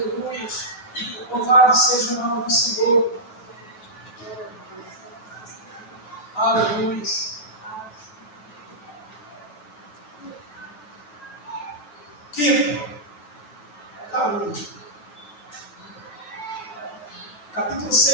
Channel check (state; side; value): late; right; 9.2 ms